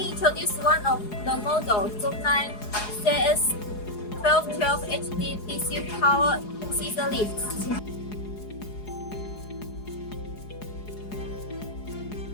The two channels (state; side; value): late; right; 4.8 ms